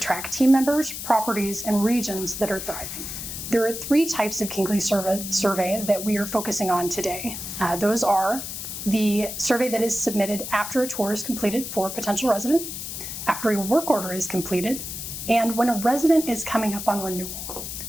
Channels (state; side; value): noise; left; hiss, 7 dB below the sound